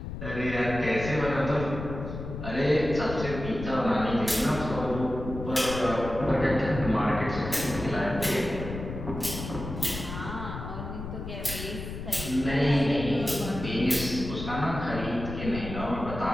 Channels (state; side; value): noise; left; rumble, 8 dB below the sound